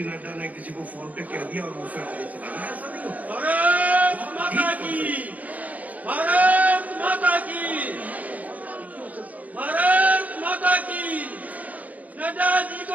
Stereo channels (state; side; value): late; left; 0.075 ms